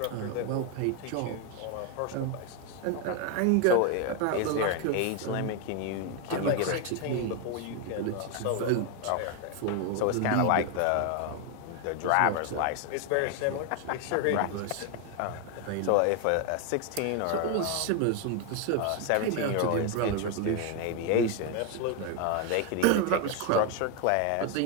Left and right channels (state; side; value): different; both; correlation 0.01